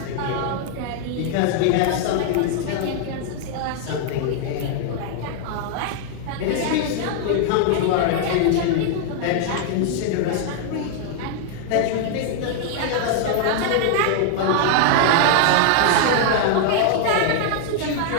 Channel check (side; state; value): both; different; correlation 0.00